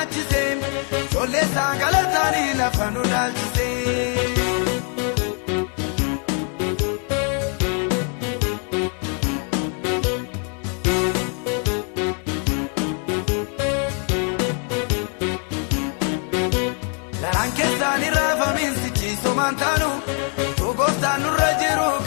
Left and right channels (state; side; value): quieter; right; 39.5 dB